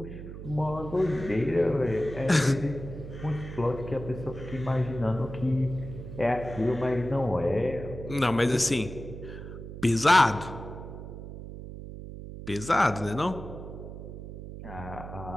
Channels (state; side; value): noise; right; hum, 11 dB below the sound